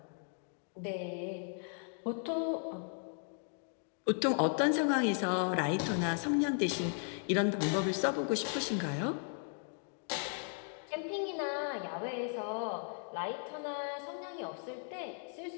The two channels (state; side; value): silent; right; 54 dB below the other